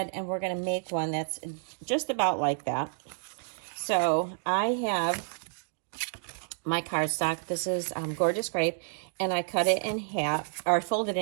and we're going to make one that's just about like that. So I have my cardstock. This is Gorgeous Grape, and I cut it in half, or I folded it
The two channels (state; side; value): silent; left; digital silence